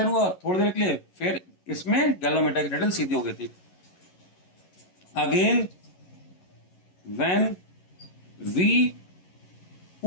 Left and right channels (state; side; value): late; right; 11 ms